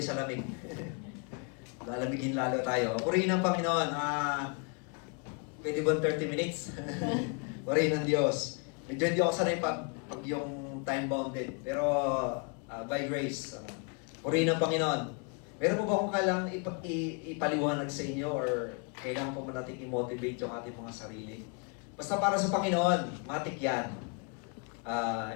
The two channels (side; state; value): right; quieter; 34.2 dB